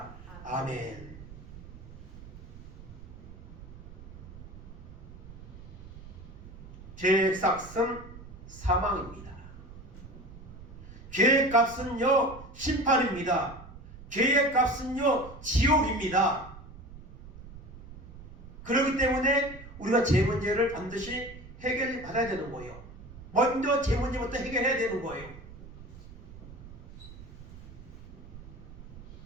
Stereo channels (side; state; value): right; noise; rumble, 16 dB below the sound